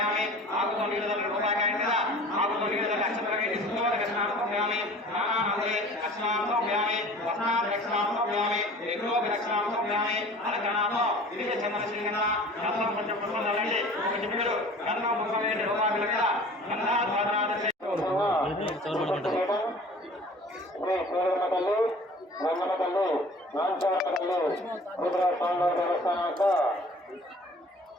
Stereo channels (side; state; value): both; normal; correlation 0.45